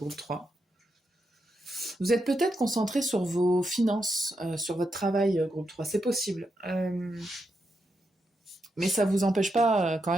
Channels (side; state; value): both; normal; correlation 0.84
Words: 3. Vous êtes peut-être concentré sur vos finances, sur votre travail, groupe 3. C'est possible. Mais ça vous empêche pas quand